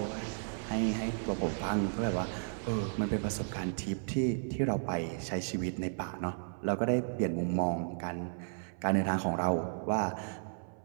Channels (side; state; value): left; silent; 55 dB below the other